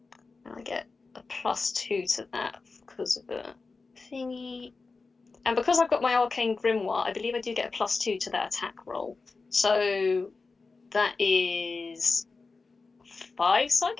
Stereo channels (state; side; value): quieter; right; 4.1 dB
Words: get a +2 to that because of the thingy. And because I've got my arcane grimoire, I believe I do get a +2 to that attack roll. So that is 5